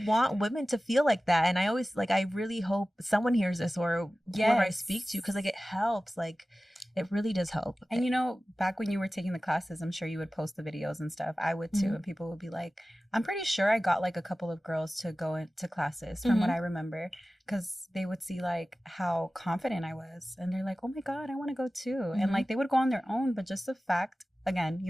women to feel like that. And I always like, I really hope someone hears this, or whoever I speak to, because like it helps. Like it really does help. And you know, back when you were taking the classes, I'm sure you would post the videos and stuff. I would too. And people would be like, I'm pretty sure I got like a couple of girls to go into classes from what I remember, because they would see like how confident I was, and they're like, oh my God, I want to go too. And like they would go on their own, but just the fact, again,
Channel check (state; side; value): normal; both; correlation 0.96